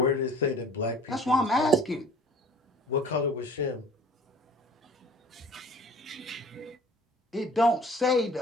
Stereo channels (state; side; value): normal; both; correlation 0.48